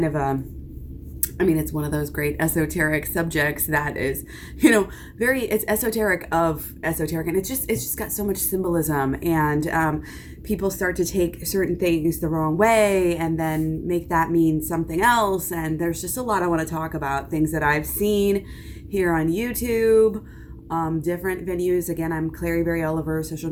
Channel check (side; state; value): both; identical; correlation 1.00